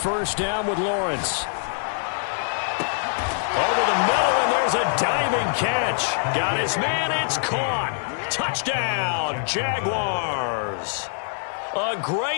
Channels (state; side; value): silent; right; digital silence